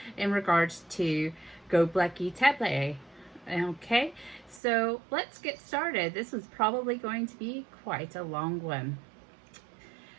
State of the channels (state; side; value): drops out; left; at 4.6 s